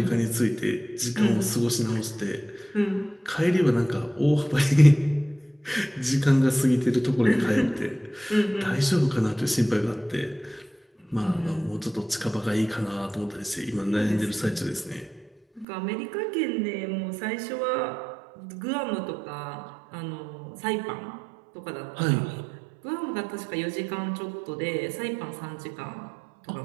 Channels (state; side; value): drops out; left; at 15.7 s